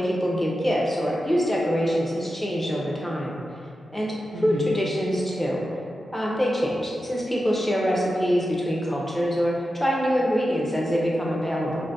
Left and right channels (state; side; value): normal; both; correlation 0.91